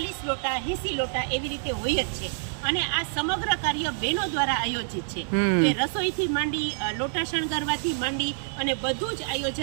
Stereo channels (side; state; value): left; silent; digital silence